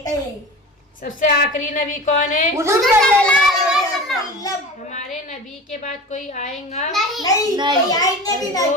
थे। सबसे आखिरी नबी कौन है? हुजूर सल्लल्लाहु अलैहि वसल्लम। हमारे नबी के बाद कोई आएगा? नहीं, कोई आएंगे भी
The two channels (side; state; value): both; normal; correlation 0.34